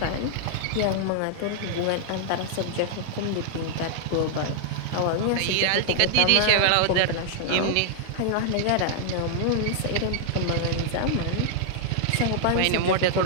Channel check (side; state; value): both; different; correlation -0.01